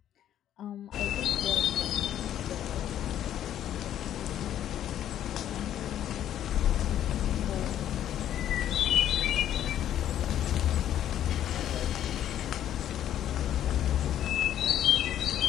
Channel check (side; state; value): right; quieter; 11.1 dB